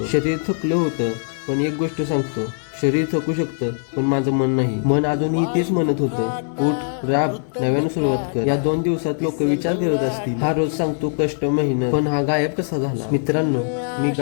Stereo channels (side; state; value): right; silent; digital silence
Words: शरीर थकलं होतं. पण एक गोष्ट सांगतो, शरीर थकू शकतं पण माझं मन नाही. मन अजूनही तेच म्हणत होतं, उठ, राब, नव्याने सुरुवात कर. या 2 दिवसात लोक विचार करत असतील, हा रोज सांगतो कष्ट, मेहनत, पण हा गायब कसा झाला? मित्रांनो, मी